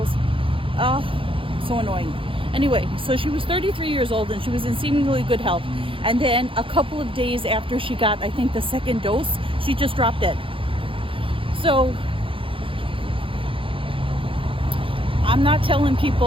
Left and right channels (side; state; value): left; late; 0.25 ms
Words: Oh, so annoying. Anyway, so she was 33 years old and she was in seemingly good health. And then a couple of days after she got, I think, the second dose, she just dropped dead. So I'm not telling